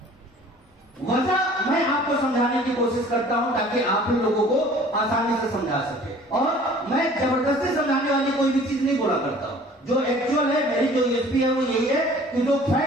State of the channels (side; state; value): both; normal; correlation 0.50